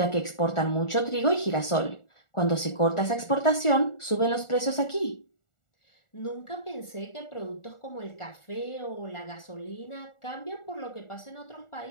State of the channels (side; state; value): right; late; 1.4 ms